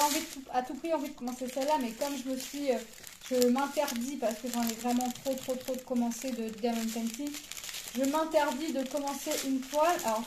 envie à tout prix envie de commencer celle-là, mais comme je me suis... je m'interdis, parce que j'en ai vraiment trop de commencer de Diamond Painting. Je m'interdis de commencer une toile. Alors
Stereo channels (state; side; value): identical; both; correlation 1.00